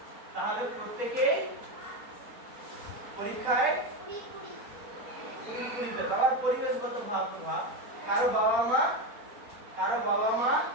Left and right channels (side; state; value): left; late; 4.3 ms